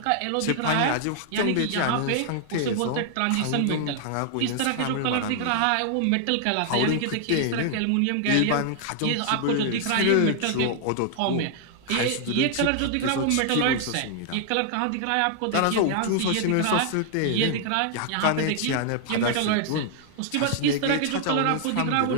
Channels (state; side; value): different; both; correlation 0.00